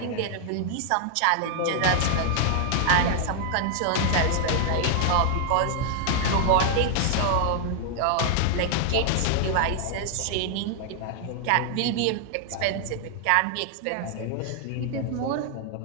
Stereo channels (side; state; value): both; different; correlation 0.00